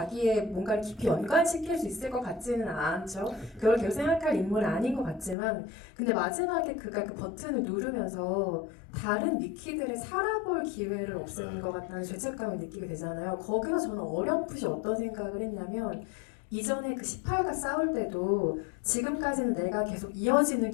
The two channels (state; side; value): drops out; right; at 5.4 s